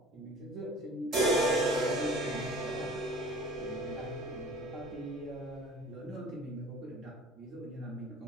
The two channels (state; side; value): normal; both; correlation 0.43